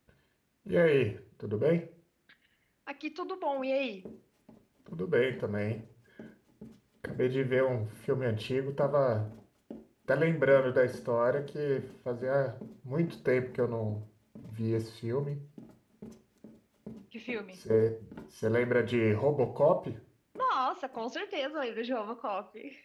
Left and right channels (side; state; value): both; identical; correlation 1.00